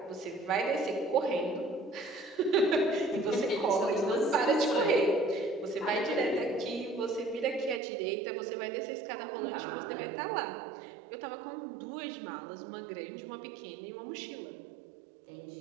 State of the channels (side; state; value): left; drops out; at 7.8 s